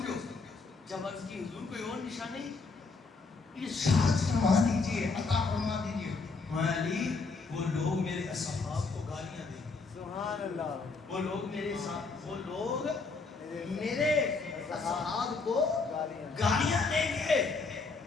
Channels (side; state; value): right; quieter; 4.2 dB